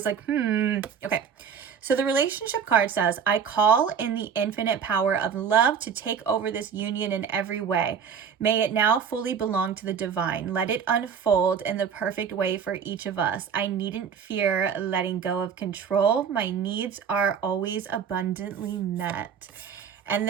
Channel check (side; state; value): left; quieter; 7.1 dB